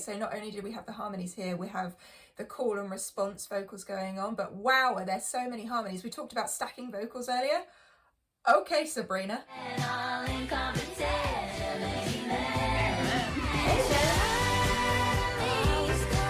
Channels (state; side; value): identical; both; correlation 1.00